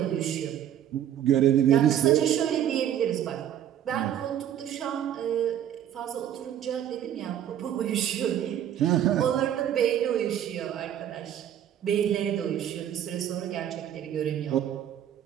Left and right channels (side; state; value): left; quieter; 10.5 dB